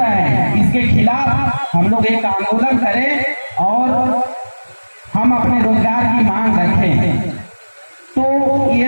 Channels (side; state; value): both; inverted; correlation -1.00